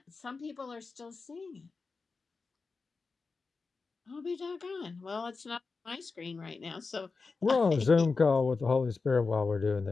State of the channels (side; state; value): right; quieter; 4.4 dB